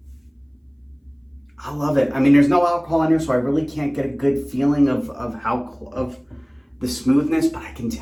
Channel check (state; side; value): identical; both; correlation 1.00